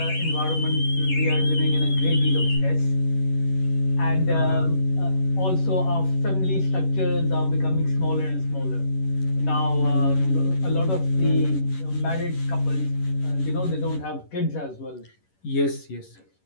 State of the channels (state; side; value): late; right; 11 ms